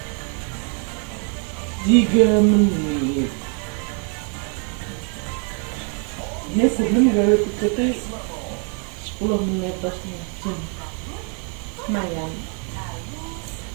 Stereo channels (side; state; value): left; quieter; 39.9 dB